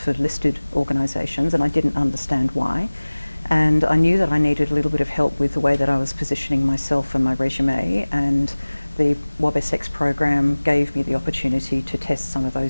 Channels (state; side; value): inverted; both; correlation -1.00